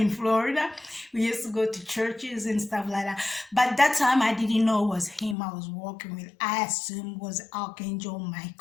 Florida. We used to go to churches and stuff like that. But that time I didn't know it was him I was walking with. I assumed it was Archangel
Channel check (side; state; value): right; drops out; at 5.4 s